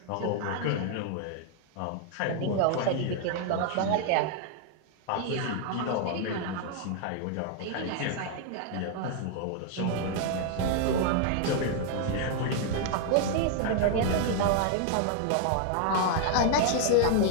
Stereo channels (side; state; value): both; different; correlation 0.00